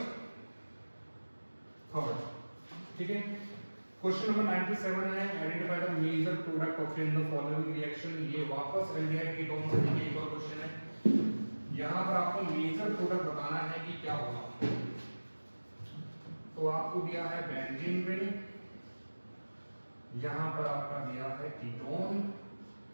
थर्ड, ठीक है। क्वेश्चन नंबर 97 है, identify the major product obtained in the following reaction. ये वापस एल्डिहाइड कीटोन से एक और क्वेश्चन है। यहाँ पर आपको मेजर प्रोडक्ट बताना है कि क्या होगा। तो आपको दिया है बेंजीन रिंग, यहाँ पर आपका दिया है कीटोन,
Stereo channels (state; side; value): inverted; both; correlation -1.00